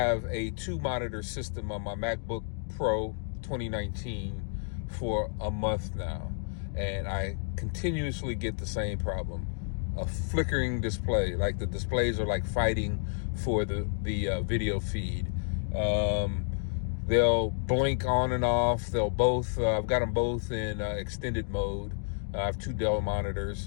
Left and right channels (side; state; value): right; silent; digital silence